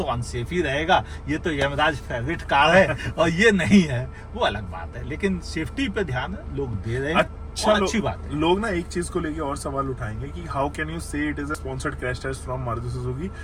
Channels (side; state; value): both; identical; correlation 1.00